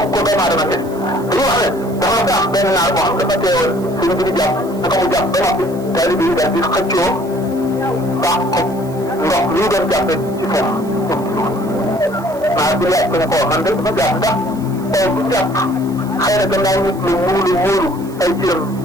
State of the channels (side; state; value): right; noise; hiss, 22 dB below the sound